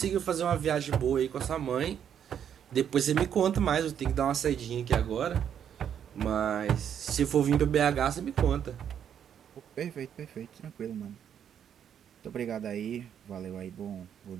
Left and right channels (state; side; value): quieter; left; 8.9 dB